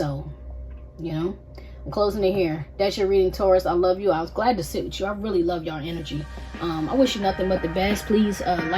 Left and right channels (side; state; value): both; identical; correlation 1.00